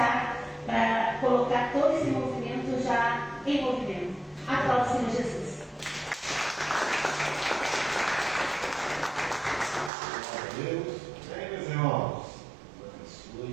para colocar todo esse movimento já em movimento. Aplauda o Senhor Jesus. Deus, bem, meus irmãos,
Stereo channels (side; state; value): left; drops out; at 9.9 s